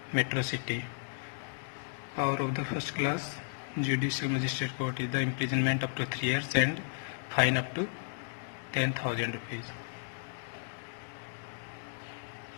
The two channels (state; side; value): silent; right; digital silence